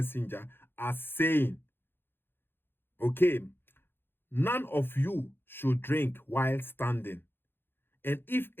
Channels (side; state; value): right; late; 0.10 ms